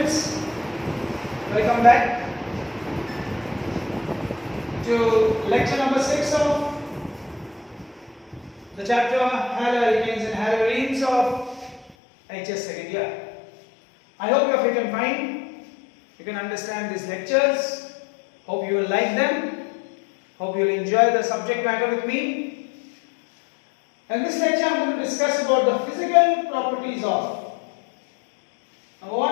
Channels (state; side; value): drops out; right; at 12.0 s